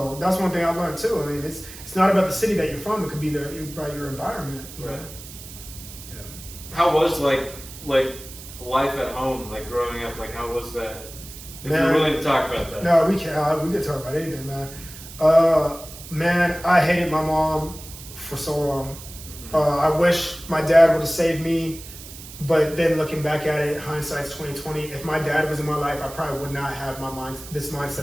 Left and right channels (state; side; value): noise; right; hiss, 15 dB below the sound